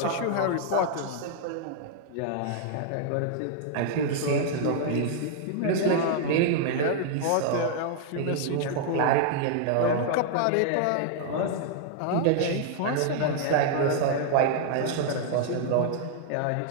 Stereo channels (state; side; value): different; both; correlation -0.01